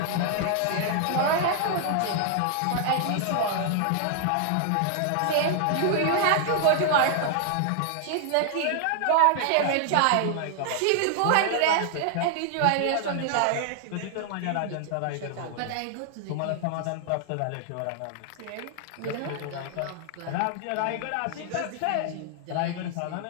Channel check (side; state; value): both; different; correlation 0.00